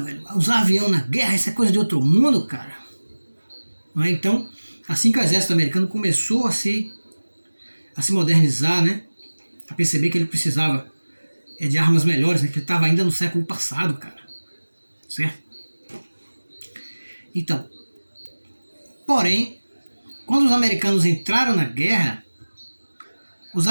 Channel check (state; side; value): inverted; both; correlation -1.00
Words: Usar avião na guerra, isso é coisa de outro mundo, cara. Não é? Então, assim que o exército americano começou a se modernizar, né? A perceber que ele precisava de armas melhores, né? Que ele estava ainda no século passado, cara. Certo? Então, porém, quando os americanos entraram na guerra, os